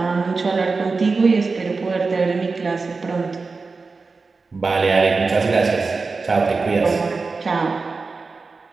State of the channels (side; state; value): left; quieter; 4.2 dB